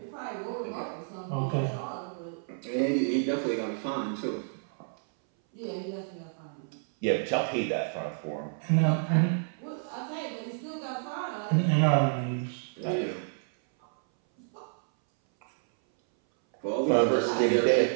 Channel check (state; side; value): silent; left; 58 dB below the other